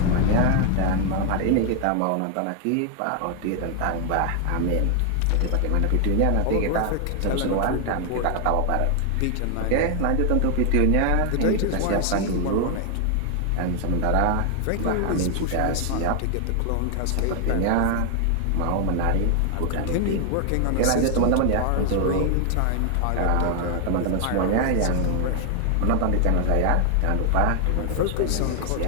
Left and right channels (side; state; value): both; different; correlation 0.00